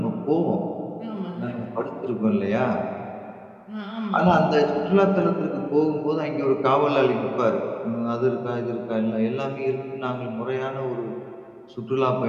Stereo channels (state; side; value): identical; both; correlation 1.00